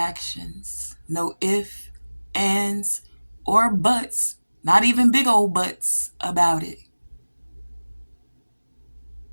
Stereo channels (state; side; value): inverted; both; correlation -1.00